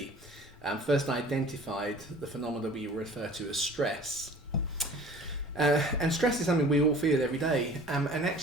first identified the phenomena we refer to as stress. And stress is something we all feel every day, and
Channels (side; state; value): both; normal; correlation 0.46